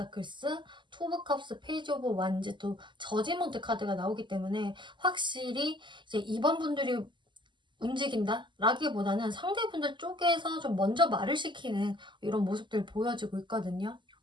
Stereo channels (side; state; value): left; late; 0.23 ms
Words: 투 오브 컵스, 페이지 오브 완즈, 또 저지먼트 카드가 나오기 때문에 확실히 이제 이번 분들이 움직인다? 라기보다는 상대분들 쪽에서 좀 먼저 말을 시키는 이런 모습들 보여지고 있거든요.